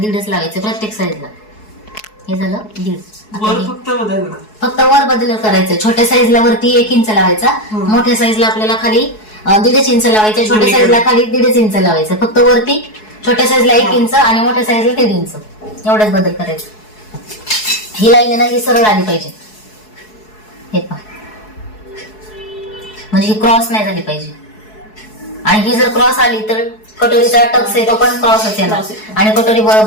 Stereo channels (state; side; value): late; right; 4.7 ms